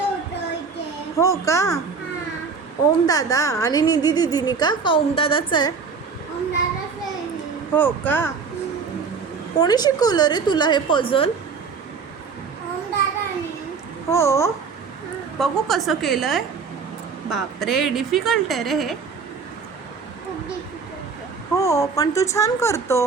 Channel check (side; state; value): left; quieter; 5.3 dB